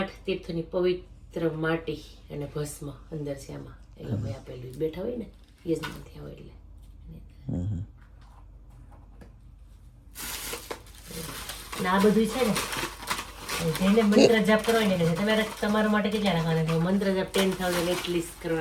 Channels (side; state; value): both; identical; correlation 1.00